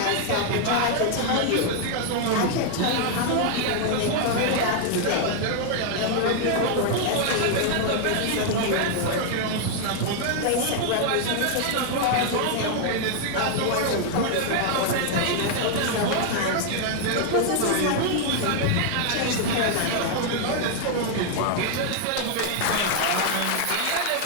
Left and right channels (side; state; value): both; different; correlation 0.00